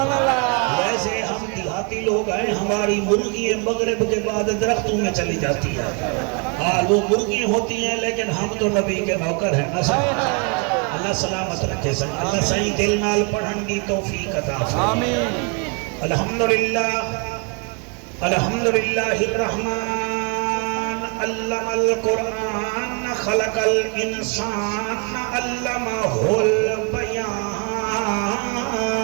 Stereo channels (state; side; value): quieter; left; 34.2 dB